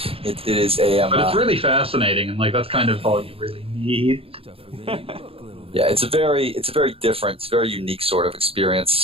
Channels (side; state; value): left; late; 0.27 ms